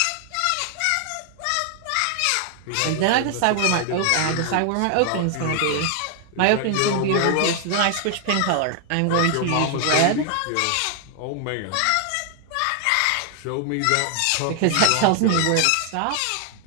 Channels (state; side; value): different; both; correlation 0.00